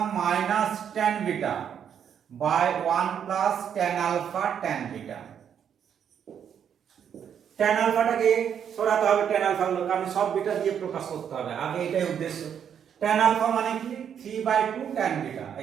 - tan beta by 1 + tan alpha tan beta। tan আলফাটাকে সরাতে হবে, tan আলফা গুলো, কারণ সব বিটা দিয়ে প্রকাশ করতে হবে, আগে এটাই উদ্দেশ্য। tan আলফা মানে কি, 3/2 tan beta,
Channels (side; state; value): left; quieter; 8.4 dB